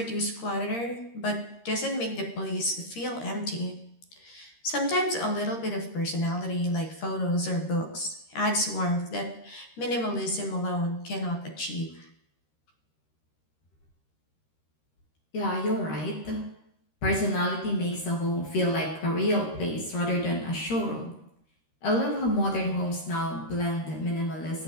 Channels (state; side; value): late; right; 13 ms